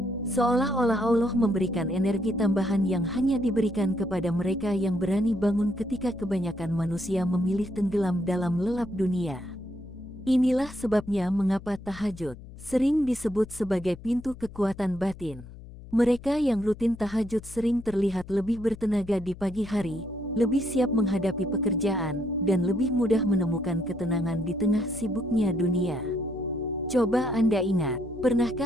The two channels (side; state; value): left; noise; hum, 16 dB below the sound